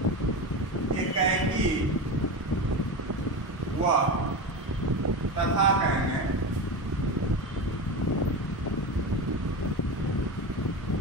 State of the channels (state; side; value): normal; both; correlation 0.22